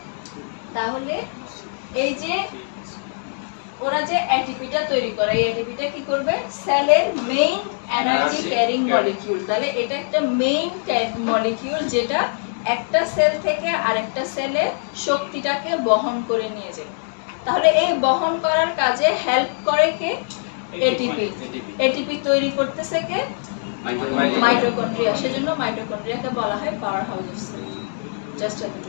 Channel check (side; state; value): right; silent; digital silence